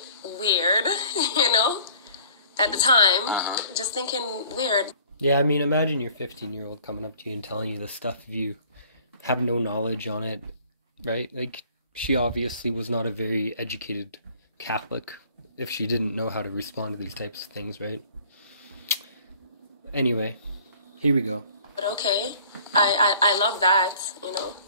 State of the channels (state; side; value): inverted; both; correlation -0.53